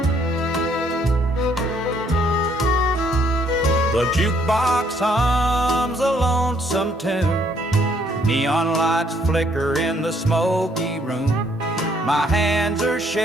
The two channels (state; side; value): normal; both; correlation 0.66